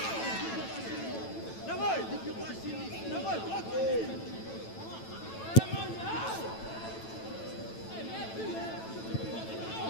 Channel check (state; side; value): late; right; 9.0 ms